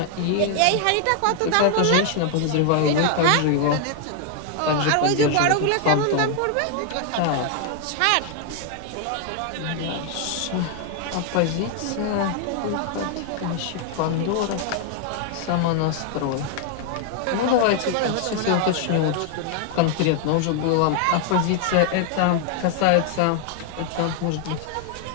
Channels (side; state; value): both; different; correlation 0.00